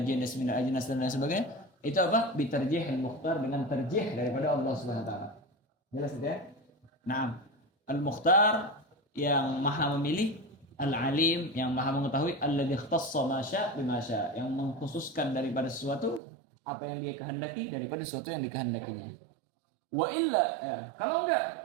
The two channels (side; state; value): left; drops out; at 16.2 s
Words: jenis min ajnas dan lain sebagainya. Itu apa? Bitarjihil mukhtar, dengan terjih daripada Allah Subhanahu wa taala. Jelas ya? Naam. Al-mukhtar yang maha memilih, Al-alim yang maha mengetahui, alladzi ikhtassa ma syaa bima syaa, yang mengkhususkan daripada sesuatu apa yang dia kehendaki daripada sesuatu yang dikehendakinya. Wa illa, ya,